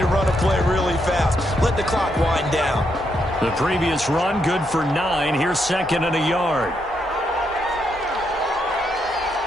run a play really fast. Let the clock wind down. The previous run, good for 9. Here's second and a yard.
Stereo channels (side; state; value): both; normal; correlation 0.79